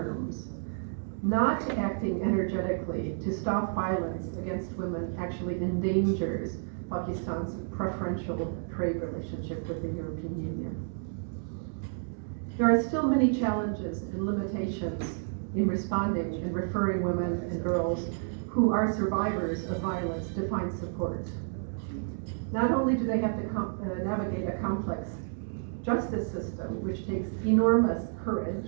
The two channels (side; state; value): left; silent; digital silence